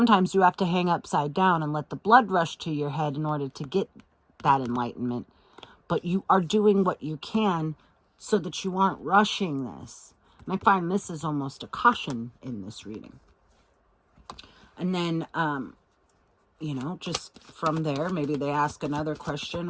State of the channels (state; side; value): identical; both; correlation 1.00